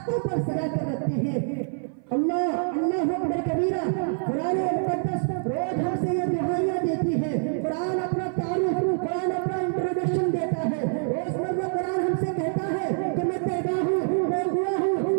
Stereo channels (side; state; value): left; silent; 55 dB below the other